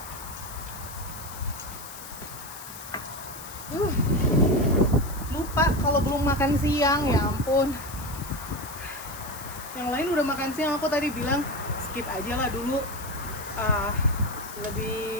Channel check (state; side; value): noise; left; hiss, 13 dB below the sound